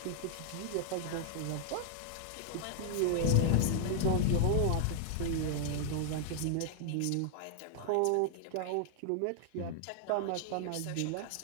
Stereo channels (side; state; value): both; different; correlation 0.00